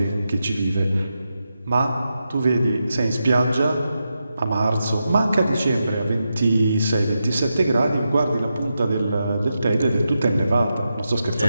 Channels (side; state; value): both; inverted; correlation -0.88